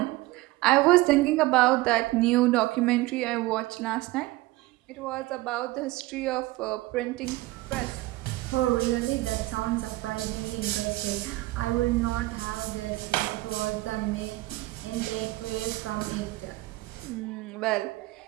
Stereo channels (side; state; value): left; quieter; 19.1 dB